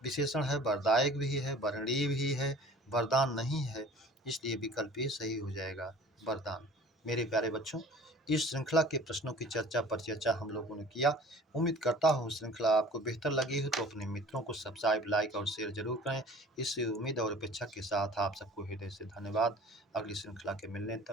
विशेषण है, वरदायक भी है, वरणीय भी है, वरदान नहीं है, इसलिए विकल्प ये सही हो जाएगा वरदान। मेरे प्यारे बच्चों, इस श्रृंखला के प्रश्नों की परिचर्चा हम लोगों ने किया। उम्मीद करता हूँ श्रृंखला आपको बेहतर लगी हो तो अपने मित्रों को सब्सक्राइब, लाइक और शेयर जरूर करें। इस उम्मीद और अपेक्षा के साथ आप सबको हृदय से धन्यवाद। अगली श्रृंखला के मिलने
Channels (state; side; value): normal; both; correlation 0.46